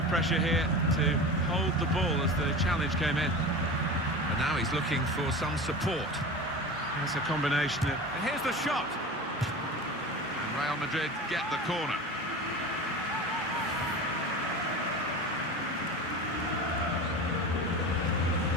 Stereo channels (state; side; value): normal; both; correlation 0.31